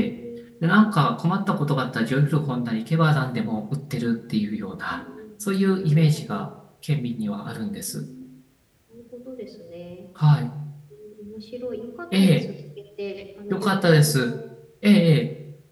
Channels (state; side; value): identical; both; correlation 1.00